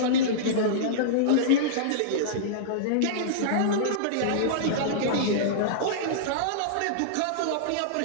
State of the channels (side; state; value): both; different; correlation -0.03